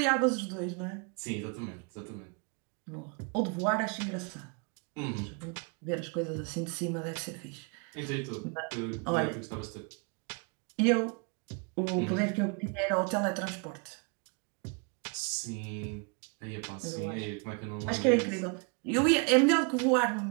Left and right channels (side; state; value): left; quieter; 35.6 dB